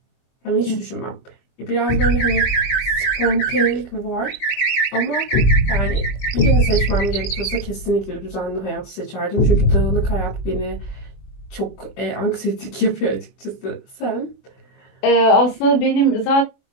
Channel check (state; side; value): late; right; 24 ms